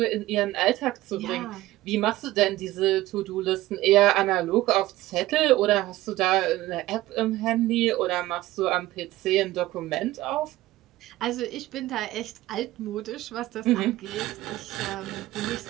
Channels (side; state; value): left; quieter; 16.5 dB